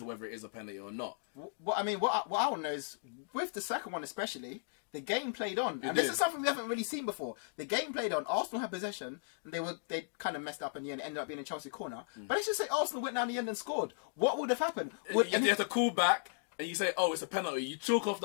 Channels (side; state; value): right; silent; digital silence